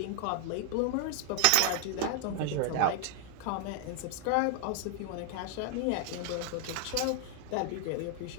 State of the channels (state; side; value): different; both; correlation 0.00